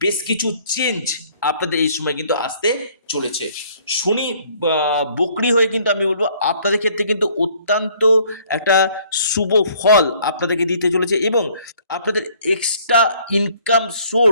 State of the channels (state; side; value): inverted; both; correlation -0.59